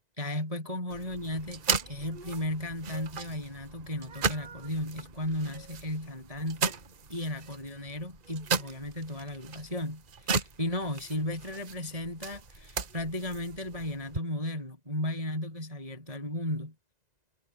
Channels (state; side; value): late; left; 2.0 ms